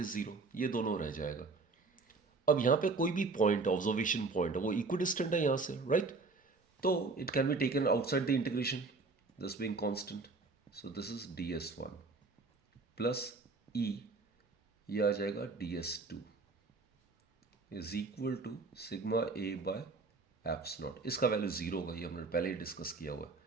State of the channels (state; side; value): quieter; left; 3.9 dB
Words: is 0, ये दोनों रह जाएगा। अब यहां पे कोई भी पॉइंट, ऑब्जर्वेशन पॉइंट है, वो इक्विडिस्टेंट है यहां से, राइट। तो it can be taken outside the integration, this being constant, so this is ds1 plus E, ये आ जाएगा ds2 is equal to sigma A by epsilon naught. इसका वैल्यू 0 होगा, ये हमने पहले ही डिस्कस किया हुआ